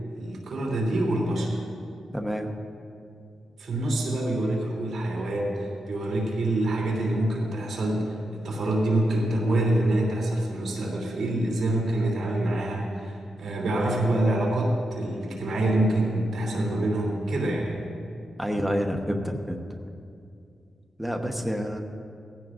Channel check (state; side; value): normal; both; correlation 0.86